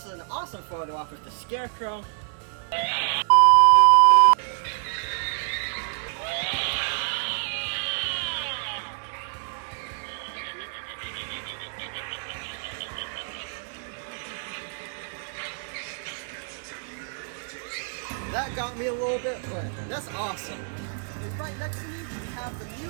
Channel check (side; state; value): left; silent; digital silence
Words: is an awesome photo op with the scarecrow. That got me a little bit, but that's awesome. And right next to me, we have the